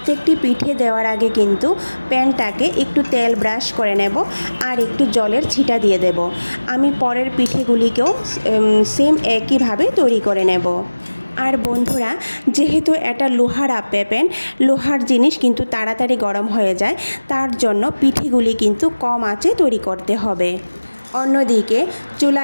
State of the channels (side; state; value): both; inverted; correlation -1.00